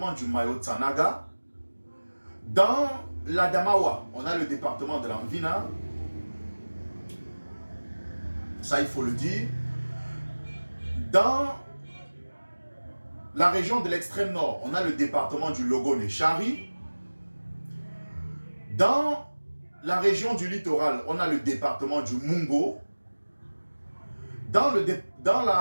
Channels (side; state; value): both; inverted; correlation -1.00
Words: du Mayo Tsanaga. Dans l'Adamawa, on a le département de l'Anvina. Ça, il faut le dire. Dans la région de l'extrême nord, on a le département du Logone-Chari. Dans la région du littoral, on a le département du Mungo. Dans